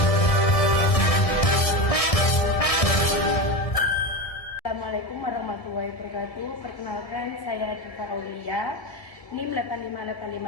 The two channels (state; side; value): late; right; 1.7 ms